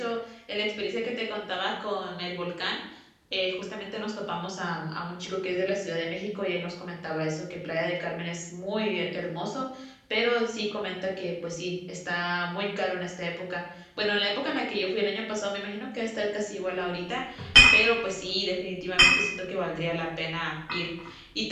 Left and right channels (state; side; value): identical; both; correlation 1.00